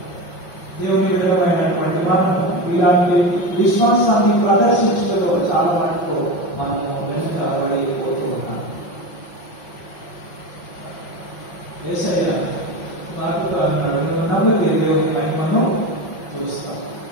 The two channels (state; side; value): late; right; 5.7 ms